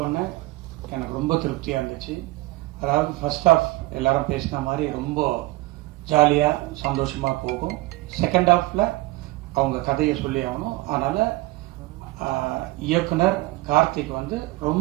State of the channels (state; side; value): quieter; left; 20.4 dB